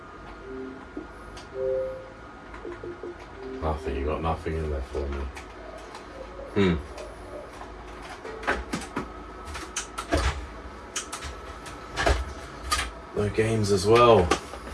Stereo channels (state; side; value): identical; both; correlation 1.00